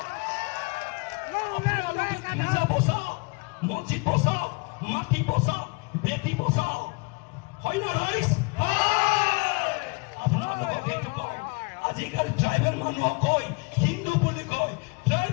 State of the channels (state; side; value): quieter; right; 30.1 dB